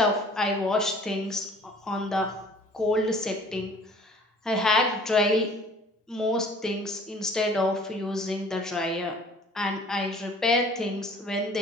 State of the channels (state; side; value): normal; both; correlation 0.51